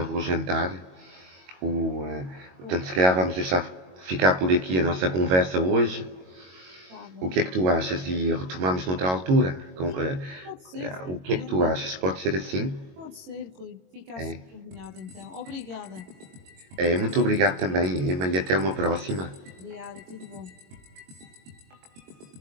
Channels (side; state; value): left; late; 22 ms